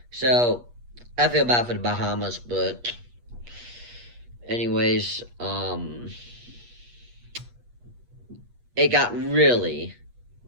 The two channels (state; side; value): late; left; 8.4 ms